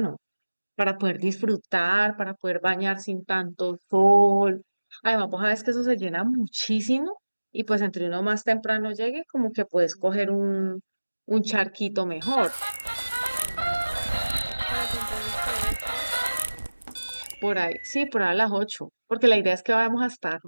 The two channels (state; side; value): inverted; both; correlation -1.00